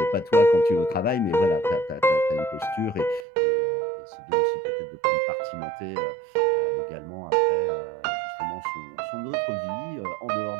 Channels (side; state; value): left; drops out; at 3.2 s